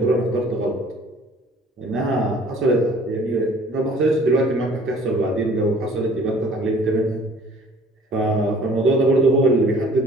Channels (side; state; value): both; normal; correlation 0.53